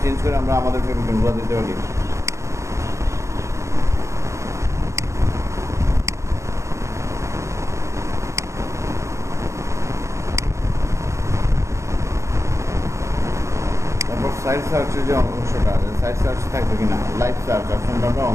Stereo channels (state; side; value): late; left; 0.14 ms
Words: চেঞ্জ করে আমরা আমাদের ফেভিকনগুলো দিতে পারি। তারপর সাইড সার্চের যে অংশটা আছে, সাইড সার্চ থাকবে কিনা, লাইভ সার্চ অপশনটা আমরা